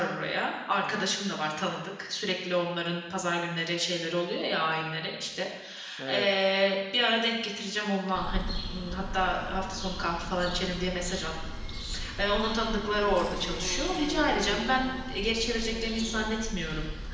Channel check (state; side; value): identical; both; correlation 1.00